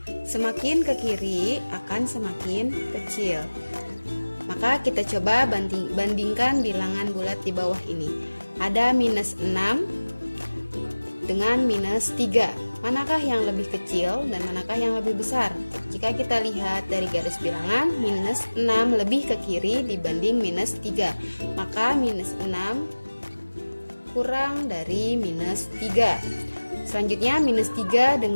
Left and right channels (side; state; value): both; inverted; correlation -1.00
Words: Semakin ke kiri akan semakin kecil. Maka kita coba bandingkan bilangan bulat di bawah ini. Ada minus 6 dengan minus 3. Manakah yang lebih kecil dan manakah yang lebih besar? Jika kita lihat dari garis bilangan, minus 6 lebih ke kiri dibanding minus 3. Maka minus 6 kurang dari minus 3. Selanjutnya minus 3